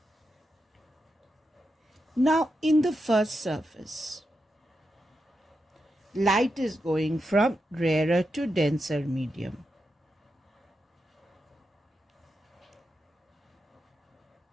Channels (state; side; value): normal; both; correlation 0.87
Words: Now in the first surface, light is going from rarer to denser medium.